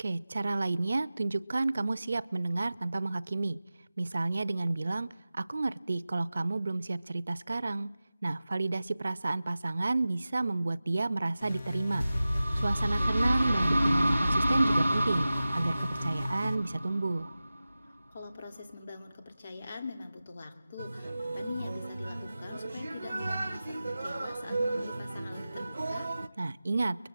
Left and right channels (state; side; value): inverted; both; correlation -0.96